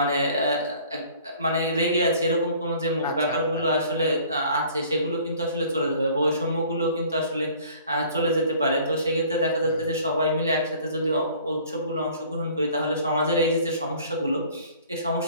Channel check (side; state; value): both; inverted; correlation -0.52